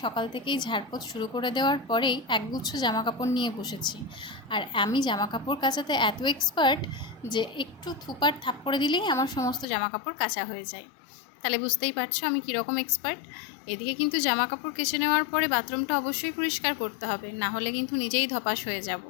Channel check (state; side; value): drops out; right; at 9.7 s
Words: সকাল থেকেই ঝাড়পোছ শুরু করে দেওয়ার পরেই একগুচ্ছ জামাকাপড় নিয়ে বসেছি। আর আমি জামাকাপড় কাচাতে এত এক্সপার্ট যে একটু থুপার থাপ করে দিলেই আমার সমস্ত জামাকাপড় কাচা হয়ে যায়। তাহলে বুঝতেই পারছো আমি কীরকম এক্সপার্ট। এদিকে কিন্তু জামা কাপড় কেচে নেওয়ার পরে বাথরুমটা অবশ্যই পরিষ্কার করতে হবে, না হলে কিন্তু নিজেই ধপাস হয়ে যাব।